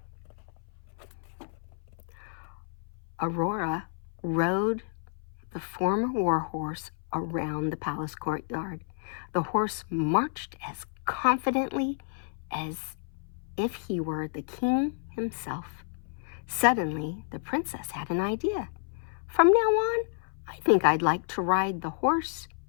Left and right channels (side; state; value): right; silent; 57 dB below the other